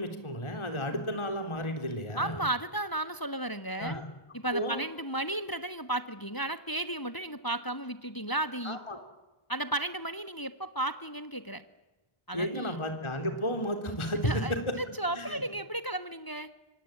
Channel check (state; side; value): late; right; 1.0 ms